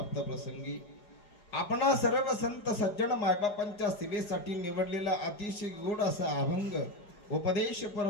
प्रसंगी आपणा सर्व संत सज्जन मायबापांच्या सेवेसाठी निवडलेला अतिशय गोड असा अभंग उपदेशपर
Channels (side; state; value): right; late; 4.9 ms